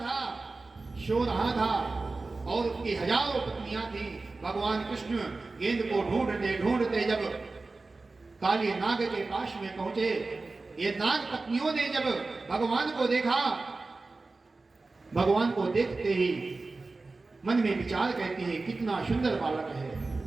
था सो रहा था और उसकी हजारों पत्नियां थी। भगवान कृष्ण गेंद को ढूंढते ढूंढते जब काली नाग के पास में पहुंचे, ये नाग पत्नियों ने जब भगवान को देखा, भगवान को देखते ही मन में विचार कहती है कितना सुंदर बालक है,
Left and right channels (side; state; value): left; quieter; 3.6 dB